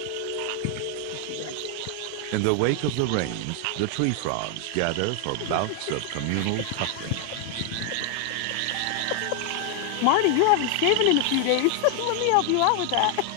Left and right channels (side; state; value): both; different; correlation 0.00